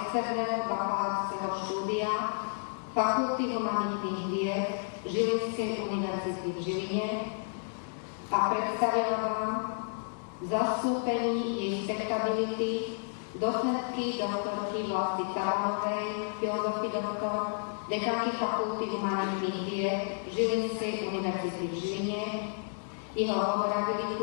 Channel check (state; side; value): silent; right; digital silence